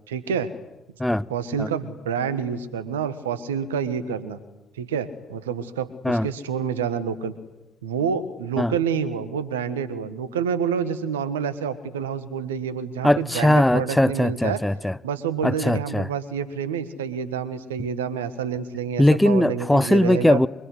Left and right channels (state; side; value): normal; both; correlation 0.59